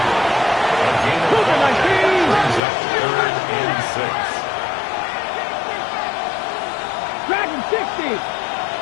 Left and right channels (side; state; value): right; drops out; at 2.6 s